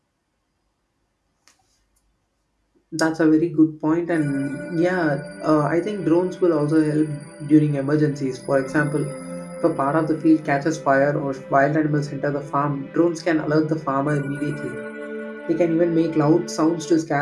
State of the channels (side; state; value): both; identical; correlation 1.00